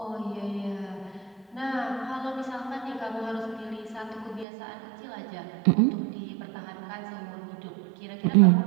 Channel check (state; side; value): drops out; left; at 4.5 s